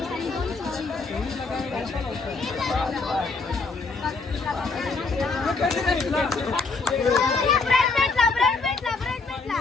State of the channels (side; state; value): right; quieter; 4.1 dB